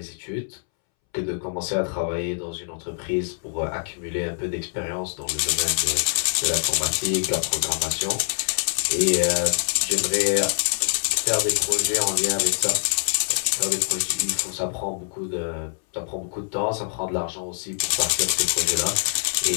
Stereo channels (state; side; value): silent; right; 62 dB below the other